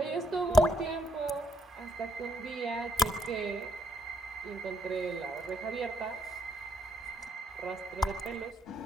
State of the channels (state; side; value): normal; both; correlation 0.72